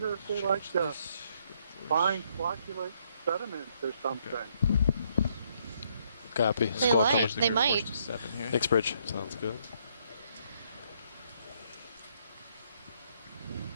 if they like to find flocculate sediments or something. Copy. They might. Thanks, Bridge. Sounds good.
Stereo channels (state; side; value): inverted; both; correlation -0.70